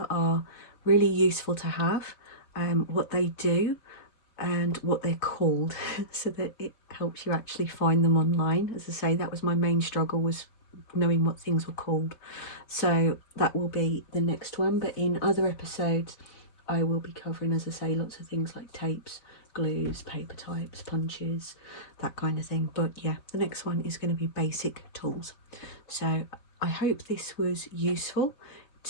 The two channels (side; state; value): right; late; 4.8 ms